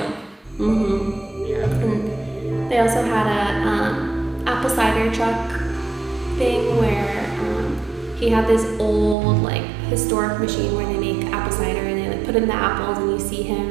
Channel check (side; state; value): left; drops out; at 9.2 s